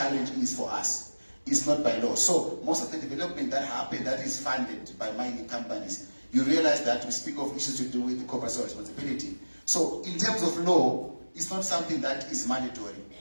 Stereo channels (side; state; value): both; inverted; correlation -1.00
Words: is for us. It's not by law. So most of the development that happens, that is funded by mining companies, you realize that we speak of issues to do with corporate social responsibility. So in terms of law, it's not something that is mandatory.